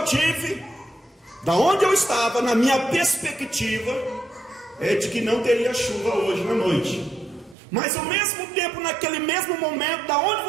tive, da onde eu estava, na minha perspectiva, é de que não teria chuva hoje na noite. Mas ao mesmo tempo, naquele mesmo momento, da onde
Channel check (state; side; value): drops out; left; at 7.6 s